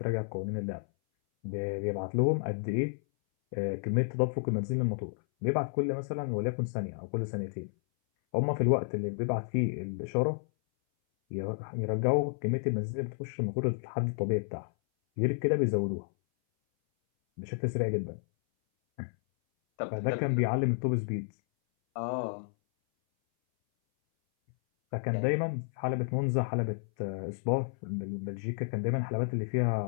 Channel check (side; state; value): right; silent; 57 dB below the other